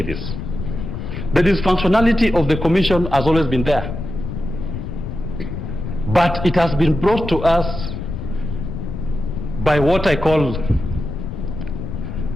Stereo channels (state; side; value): noise; left; rumble, 6 dB below the sound